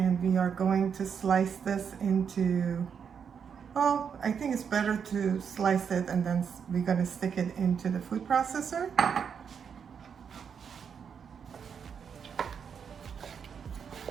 we are going to slice this into, well, I think it's better to slice it and then we're going to stick it into the food processor.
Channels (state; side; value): quieter; left; 7.0 dB